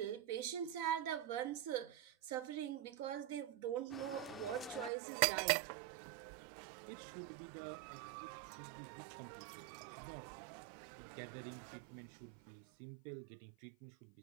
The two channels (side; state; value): left; drops out; at 4.9 s